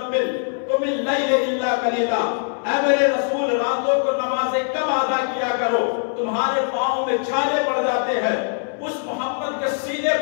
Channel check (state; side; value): silent; right; 64 dB below the other